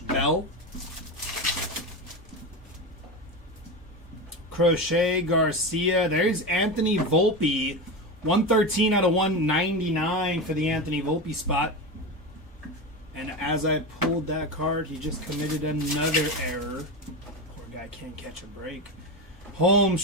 Crochet, Garcia. There's Anthony Volpe. 113 out of 199 for the Anthony Volpe spot. And as I pulled that card, he just committed another error. Poor guy can't catch a break.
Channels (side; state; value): both; normal; correlation 0.20